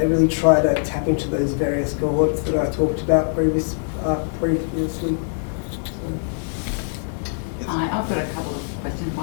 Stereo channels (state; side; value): silent; right; digital silence